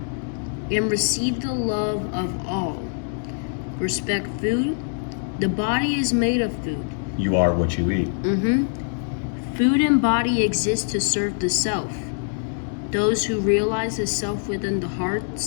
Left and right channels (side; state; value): right; silent; digital silence